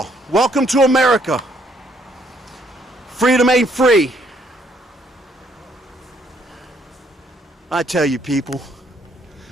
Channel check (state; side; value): normal; both; correlation 0.68